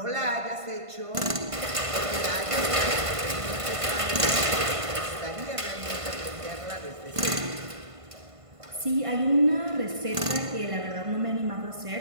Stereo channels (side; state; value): left; late; 1.5 ms